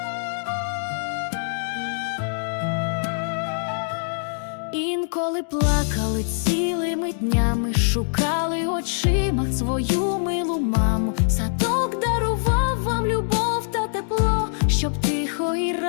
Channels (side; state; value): right; silent; digital silence